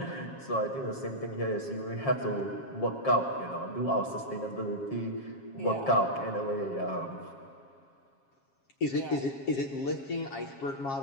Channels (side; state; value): right; late; 7.4 ms